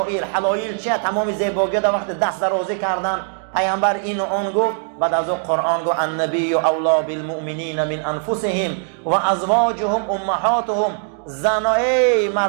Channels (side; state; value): left; silent; 66 dB below the other